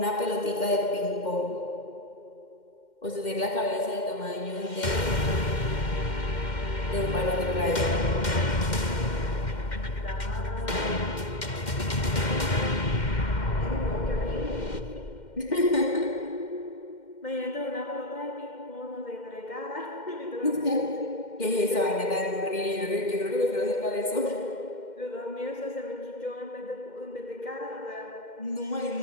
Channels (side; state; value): right; late; 2.1 ms